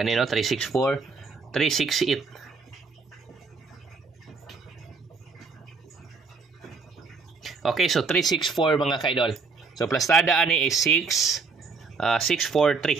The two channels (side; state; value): left; quieter; 4.6 dB